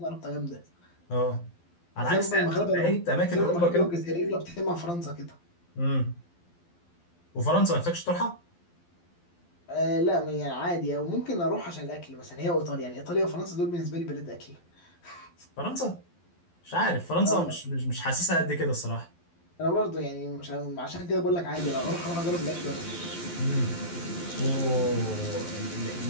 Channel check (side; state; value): right; late; 12 ms